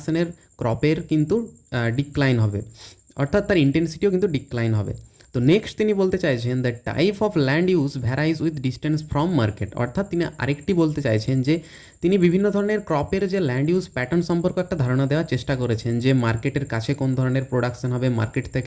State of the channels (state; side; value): identical; both; correlation 1.00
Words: ক্রপের কিন্তু ডিক্লাইন হবে, অর্থাৎ তার ইন্টেন্সিটিও কিন্তু ডিক্লাইন হবে। তো নেক্সট তিনি বলতে চাইছেন the type of land use ভ্যারাইজ with distance from market. অর্থাৎ তিনি আরেকটি বলতে চাইছেন যে তিনি বিভিন্ন ধরনের ক্রপের যে ল্যান্ড ইউজ প্যাটার্ন সম্পর্কে একটা ধারণা দেওয়ার চেষ্টা করেছেন, যে মার্কেটের কাছে কোন ধরনের প্রোডাকশন হবে, মার্কেট